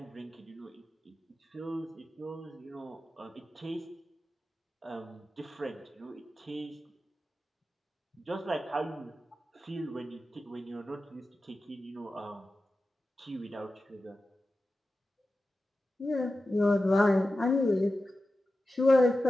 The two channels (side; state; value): both; normal; correlation 0.93